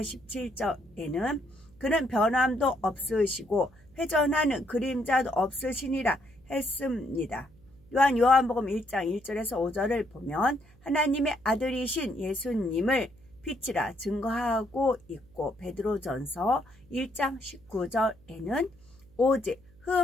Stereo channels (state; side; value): noise; right; hum, 27 dB below the sound